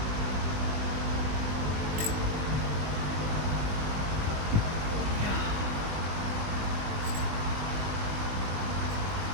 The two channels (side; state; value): left; late; 20 ms